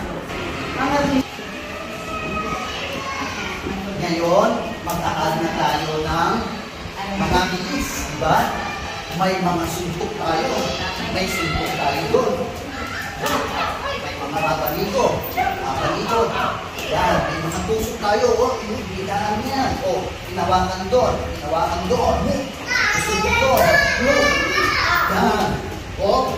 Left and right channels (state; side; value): identical; both; correlation 1.00